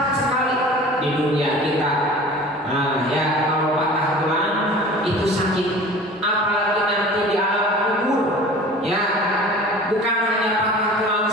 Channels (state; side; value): normal; both; correlation 0.42